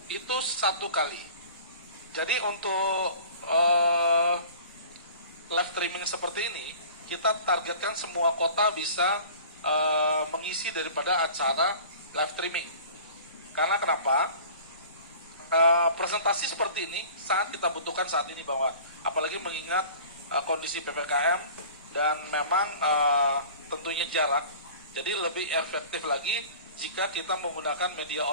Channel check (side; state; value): both; inverted; correlation -0.44